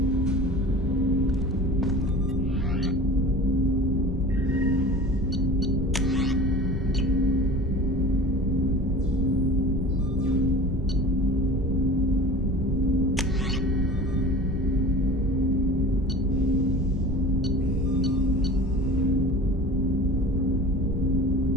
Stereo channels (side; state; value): both; normal; correlation 0.38